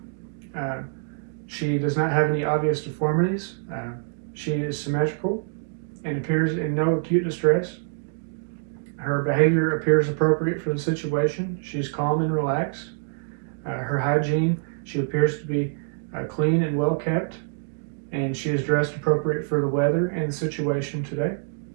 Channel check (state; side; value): silent; left; digital silence